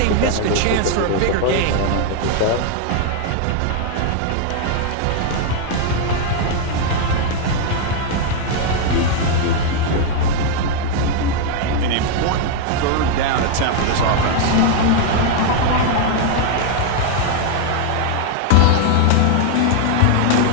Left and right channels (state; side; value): different; both; correlation 0.00